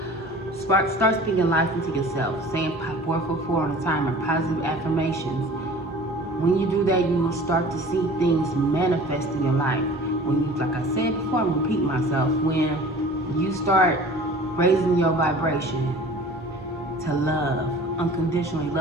Start speaking life into yourself. Saying 444 on the timer, positive affirmations. When you do that, you will start to see things manifest in your life. When you, like I said before, I'm repeating myself. When you start raising your vibration to love, unconditionally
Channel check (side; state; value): both; normal; correlation 0.44